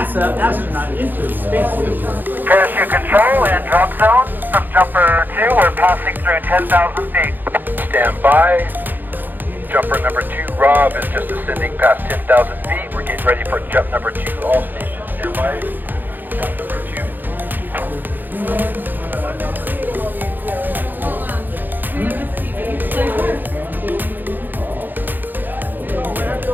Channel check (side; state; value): left; late; 0.088 ms